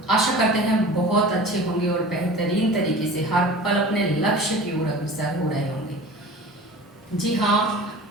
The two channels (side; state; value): both; normal; correlation 0.39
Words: आशा करते हैं बहुत अच्छे होंगे और बेहतरीन तरीके से हर पल अपने लक्ष्य की ओर अग्रसर हो रहे होंगे। जी हाँ,